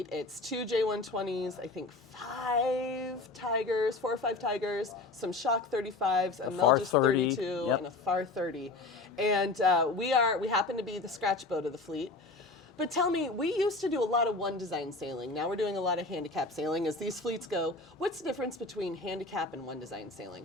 It's 2 J120s, I think 5 Tigers, 4 or 5 Tigers, some Shock 35s, a Melges 32, yep, and a Far 30. And we happen to be the scratch boat of the fleet. But tell me, we used to do a lot of one design sailing. Now we're doing a lot of handicap sailing as these fleets go. What's the difference between handicap and one design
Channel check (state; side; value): quieter; right; 3.4 dB